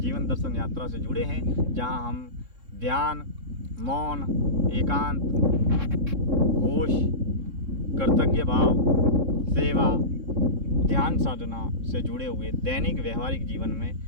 दर्शन यात्रा से जुड़े हैं, जहाँ हम ध्यान, मौन, एकांत, होश, कर्तव्य भाव, सेवा, ध्यान साधना से जुड़े हुए दैनिक व्यवहारिक जीवन में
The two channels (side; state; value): left; late; 3.7 ms